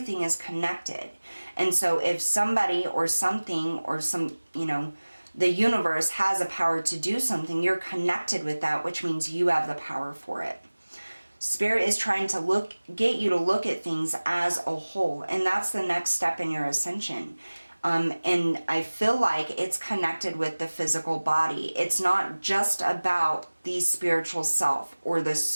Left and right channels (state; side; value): inverted; both; correlation -1.00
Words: is connected. And so if somebody or something or the universe has a power to do something, you're connected with that, which means you have the power for it. Spirit is trying to get you to look at things as a whole, and that's the next step in your ascension. And I feel like it's connected with the physical body. It's not just about the spiritual self or the